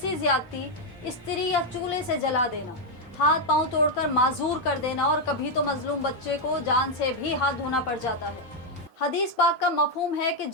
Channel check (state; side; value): normal; both; correlation 0.01